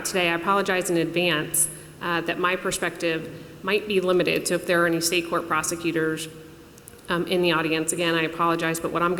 today, I apologize in advance that my perspective might be limited. So if there are any state court prosecutors in the audience, again, I apologize, but what I'm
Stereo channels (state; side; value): identical; both; correlation 1.00